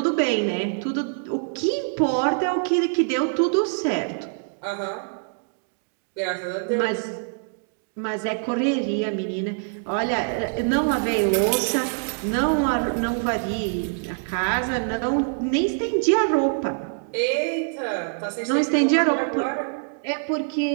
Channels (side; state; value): left; silent; digital silence